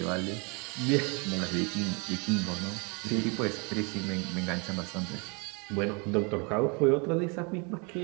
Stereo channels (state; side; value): quieter; left; 31.8 dB